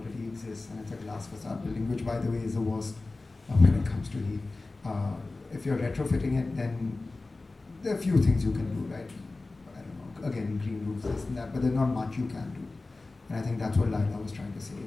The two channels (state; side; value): quieter; right; 3.3 dB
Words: exists and it's a glass facade building, which by the way is the worst when it comes to heat. If you're retrofitting it, then there are a few things you can do, right? I don't know, again, green roofs, this and that, but there's not much you can do. And I think that's what Laila was trying to say.